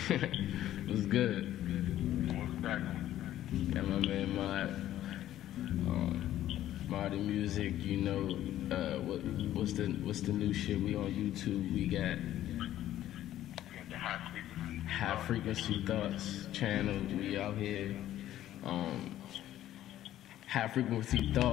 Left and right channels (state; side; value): quieter; right; 12.9 dB